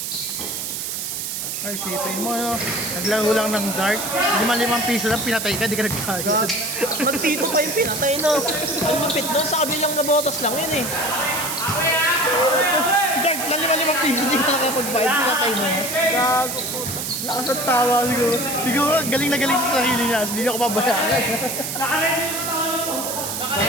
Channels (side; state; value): right; noise; hiss, 4 dB below the sound